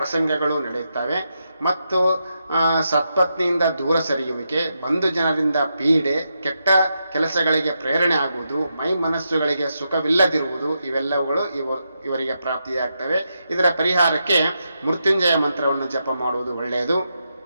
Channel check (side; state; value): both; inverted; correlation -0.84